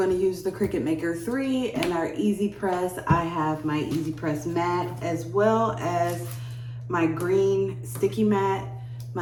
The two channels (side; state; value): both; identical; correlation 1.00